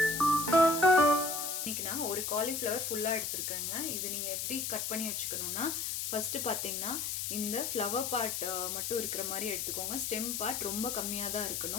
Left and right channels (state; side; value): noise; left; hiss, 2 dB below the sound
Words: இன்றைக்கி நான் ஒரு காலிஃப்ளவர் ஃபுல்லாக எடுத்துருக்கேங்க. இது நீங்கள் எப்படி கட் பண்ணி வச்சுக்கணுன்னா, ஃபஸ்ட்டு பார்த்தீங்கன்னா இந்த ஃப்ளவர் பார்ட் மட்டும் இருக்கிற மாதிரி எடுத்துக்கோங்க. ஸ்டெம் பார்ட் ரொம்ப கம்மியாக தான்